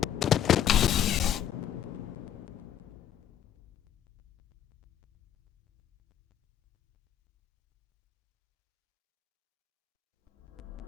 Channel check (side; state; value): right; quieter; 10.1 dB